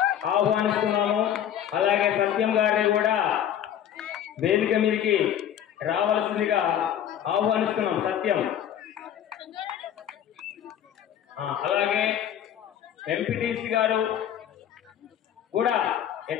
ఆహ్వానిస్తున్నాము. అలాగే సత్యం గారిని కూడా వేదిక మీదకి రావాల్సిందిగా ఆహ్వానిస్తున్నాం. సత్యం, అలాగే ఎంపీటీసీ గారు కూడా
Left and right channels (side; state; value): right; quieter; 10.0 dB